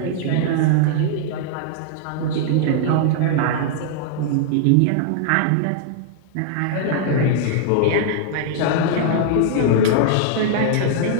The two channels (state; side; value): different; both; correlation -0.01